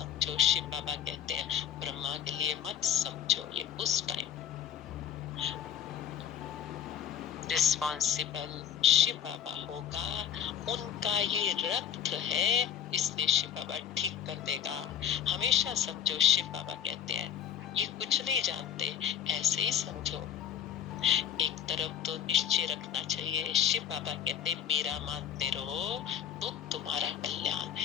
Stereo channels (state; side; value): quieter; right; 9.4 dB